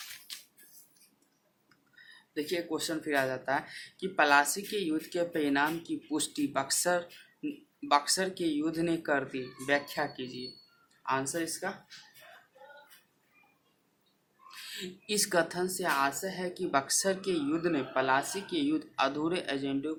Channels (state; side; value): identical; both; correlation 1.00